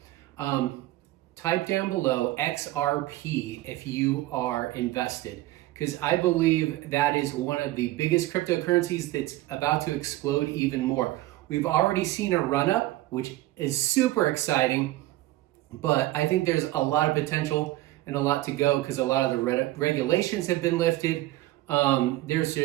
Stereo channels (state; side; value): quieter; left; 16.8 dB